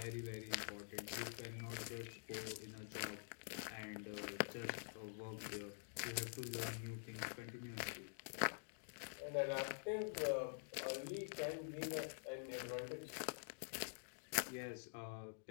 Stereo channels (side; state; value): right; silent; digital silence